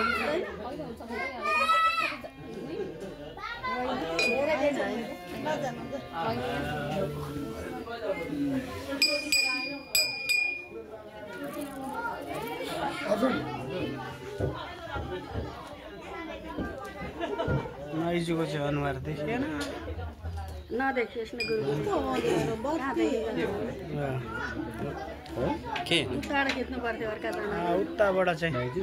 माइजूको चाहिँ अनुहार देखिएन नदेखियोस् न गुरु के टाढा खिच्नु पर्थ्यो अर्काजना उताबाट चाहिँ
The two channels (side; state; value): both; identical; correlation 1.00